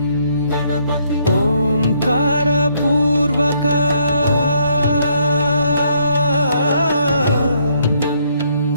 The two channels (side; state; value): both; inverted; correlation -0.69